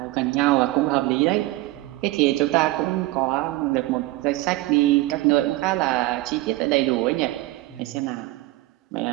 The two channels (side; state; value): left; quieter; 18.7 dB